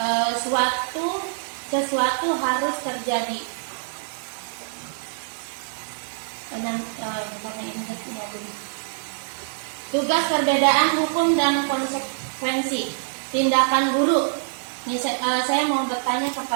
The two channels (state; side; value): silent; left; digital silence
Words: sesuatu harus terjadi. Tugas perbedaan hukum dan konsekuensi. Tindakan buruk. Ini saya mau bertanya